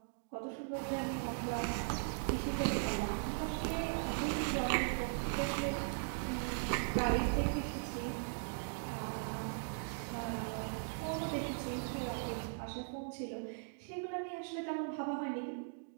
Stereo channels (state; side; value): silent; left; digital silence